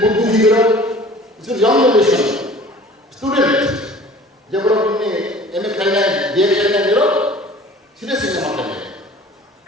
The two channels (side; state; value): both; normal; correlation 0.46